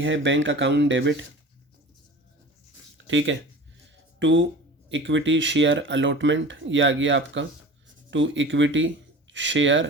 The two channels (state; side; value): normal; both; correlation 0.38